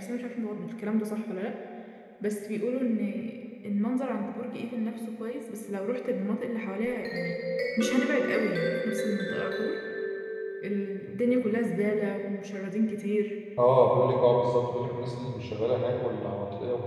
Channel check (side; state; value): both; identical; correlation 1.00